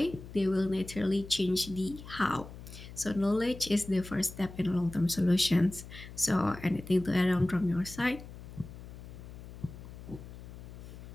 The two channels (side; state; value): left; noise; hum, 14 dB below the sound